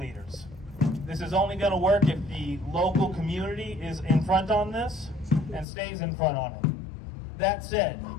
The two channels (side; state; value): right; drops out; at 5.7 s